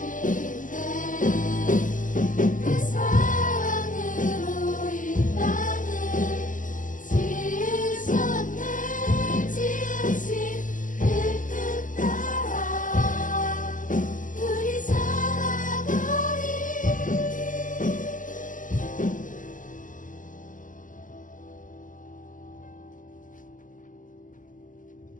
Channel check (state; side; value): late; right; 0.38 ms